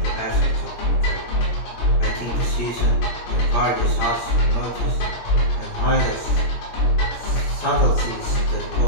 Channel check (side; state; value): right; late; 17 ms